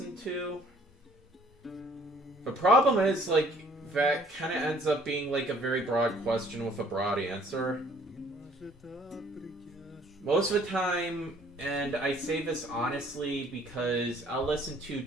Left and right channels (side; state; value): both; normal; correlation 0.58